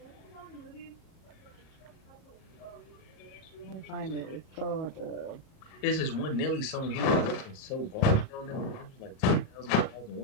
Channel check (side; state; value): right; late; 38 ms